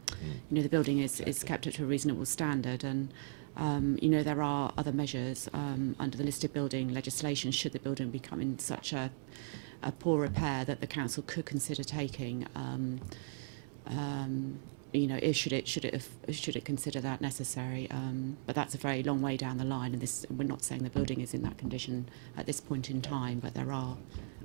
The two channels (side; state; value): left; silent; digital silence